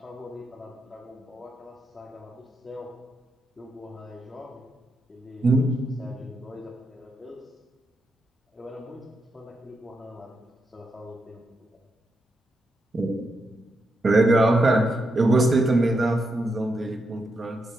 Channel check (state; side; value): normal; both; correlation 0.83